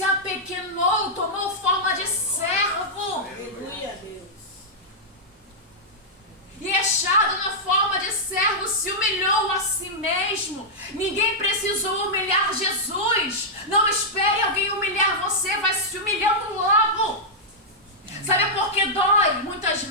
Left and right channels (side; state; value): both; normal; correlation -0.08